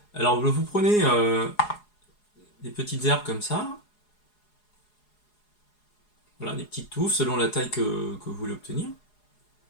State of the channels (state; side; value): late; right; 4.8 ms